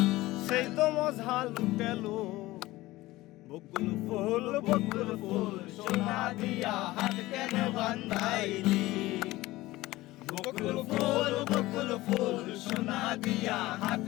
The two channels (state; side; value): quieter; right; 18.2 dB